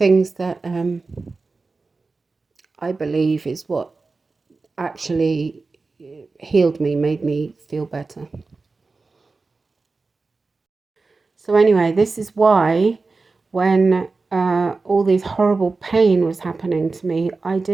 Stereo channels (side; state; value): left; quieter; 3.9 dB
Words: that I believe is what actually healed me, made me feel better. So anyway, this is why when all this horrible pain was happening to me, I